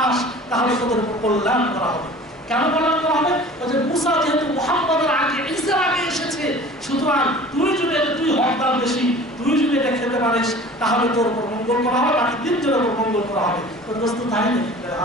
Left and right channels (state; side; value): normal; both; correlation 0.43